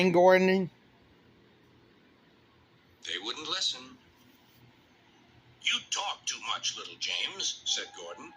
Gordon? They wouldn't listen. You talk too much, little James, said Gordon.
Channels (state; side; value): identical; both; correlation 1.00